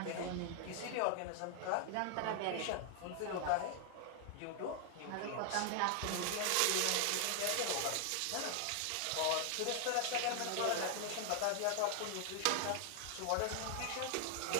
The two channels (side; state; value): both; different; correlation 0.00